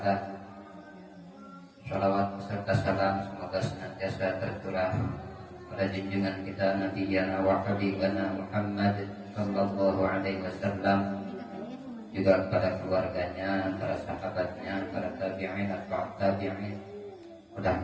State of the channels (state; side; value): identical; both; correlation 1.00